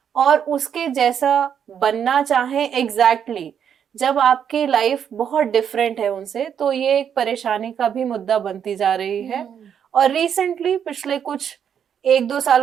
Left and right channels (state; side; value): quieter; left; 8.3 dB